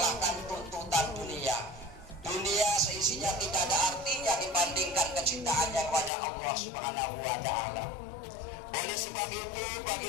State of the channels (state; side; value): drops out; right; at 6.1 s